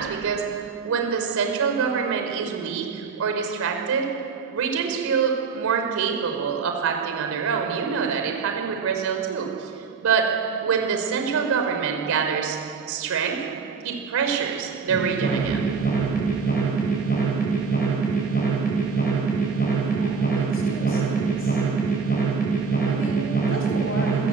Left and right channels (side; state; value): left; quieter; 5.2 dB